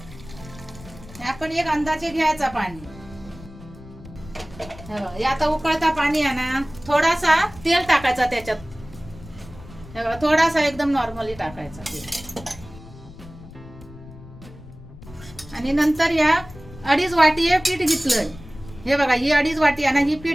आपण एक अंदाजे घ्यायचा पाणी। हे आता उकळता पाणी आहे ना, थोडासा तेल टाकायचा त्याच्यात। हे बघा थोडासा एकदम नॉर्मली टाकायचा तेल, आणि नंतर या 2.5 वाटी हे पीठ घेतलंय। हे बघा ही 2.5 वाटी आहे ना, ही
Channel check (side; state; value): left; noise; rumble, 18 dB below the sound